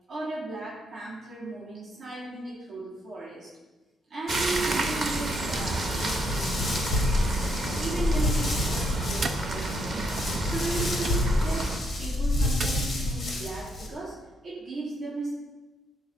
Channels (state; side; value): normal; both; correlation 0.75